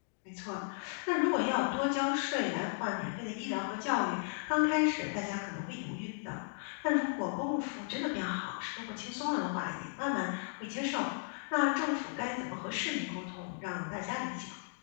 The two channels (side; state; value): right; silent; digital silence